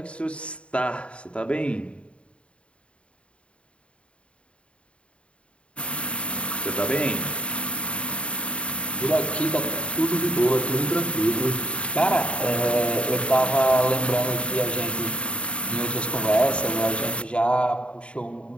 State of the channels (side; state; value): right; late; 0.059 ms